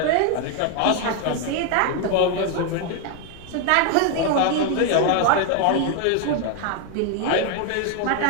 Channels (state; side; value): different; both; correlation 0.01